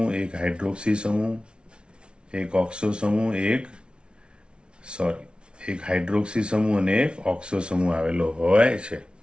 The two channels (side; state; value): left; late; 0.057 ms